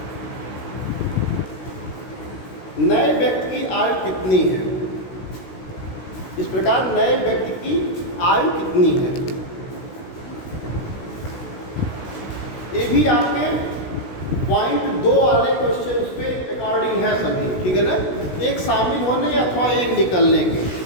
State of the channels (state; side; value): late; right; 16 ms